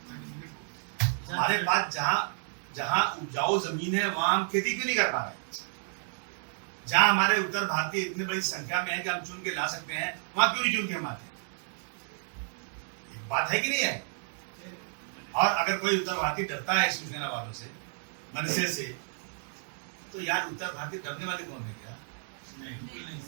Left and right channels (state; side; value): silent; left; 57 dB below the other